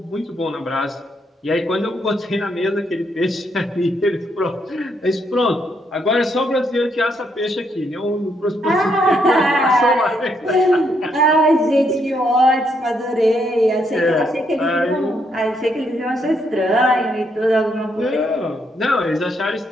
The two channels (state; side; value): normal; both; correlation 0.75